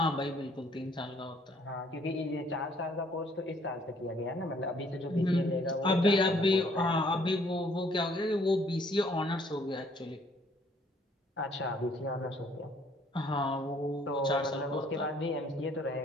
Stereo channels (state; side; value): normal; both; correlation 0.62